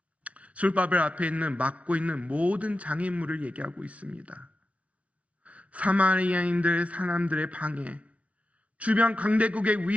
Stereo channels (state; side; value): late; left; 0.065 ms